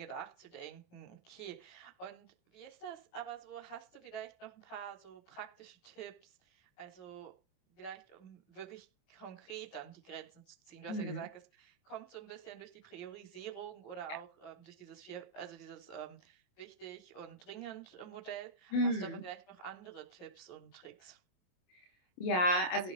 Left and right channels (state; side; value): late; right; 28 ms